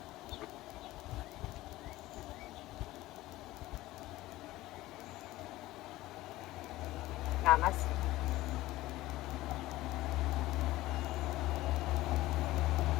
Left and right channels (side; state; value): right; quieter; 17.1 dB